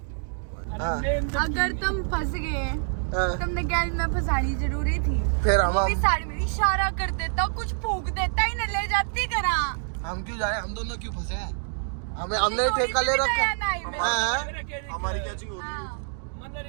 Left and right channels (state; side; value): silent; left; 61 dB below the other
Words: अगर तुम फंस गए तुमने गैल में फंसानी जरूरी थी। फिर हम साड़ी में इशारा कर देता, कुछ फूक देता ही न ले जाती करा। हम क्यों जाए? हम दोनों क्यों फंसे हैं? हमने ठेका ले रखा है। हमारी कैचिंग हो रही है। मतलब